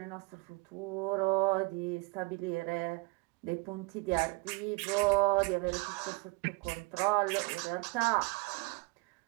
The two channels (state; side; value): quieter; left; 25.9 dB